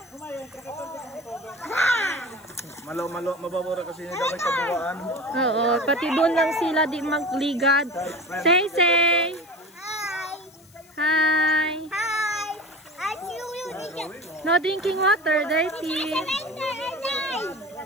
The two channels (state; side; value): noise; left; hiss, 27 dB below the sound